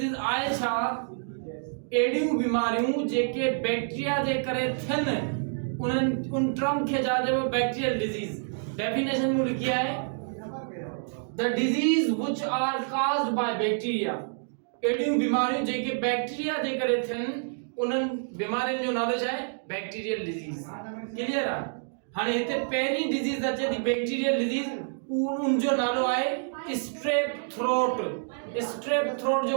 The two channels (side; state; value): left; silent; digital silence